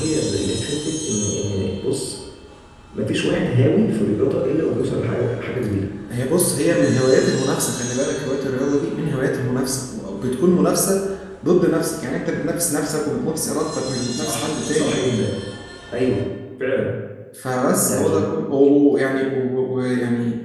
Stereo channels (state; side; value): identical; both; correlation 1.00